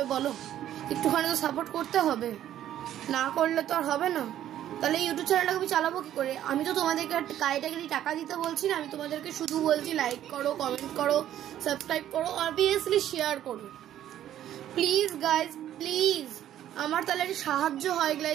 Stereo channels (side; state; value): left; quieter; 11.7 dB